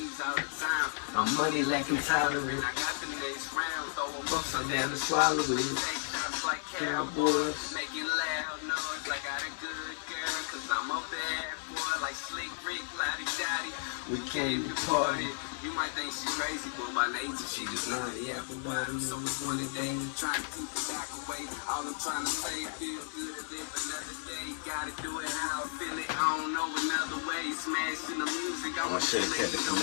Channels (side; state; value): right; silent; digital silence